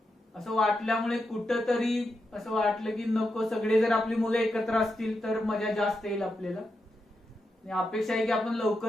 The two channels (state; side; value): normal; both; correlation 0.86